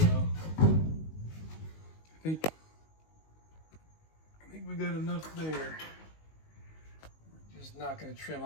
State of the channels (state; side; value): late; right; 19 ms